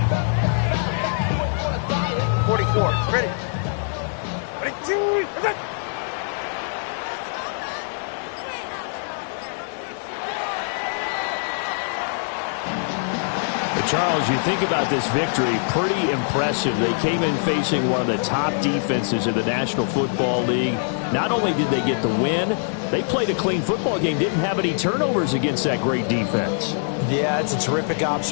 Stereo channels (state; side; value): silent; right; digital silence